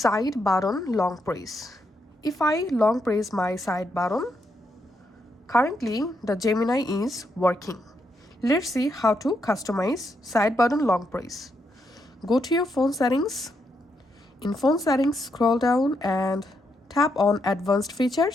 button long press. If I long press my side button, currently the Gemini is working. Let's see how to customize side button long press. Go to your phone settings. In phone settings, scroll down and tap on advanced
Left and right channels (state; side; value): normal; both; correlation 0.80